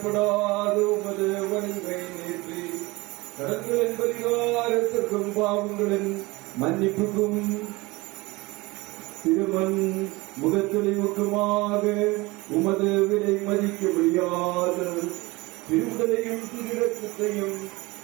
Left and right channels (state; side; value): quieter; left; 22.6 dB